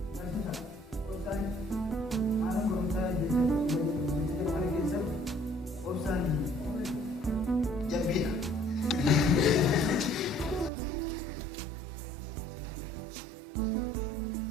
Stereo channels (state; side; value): drops out; left; at 10.7 s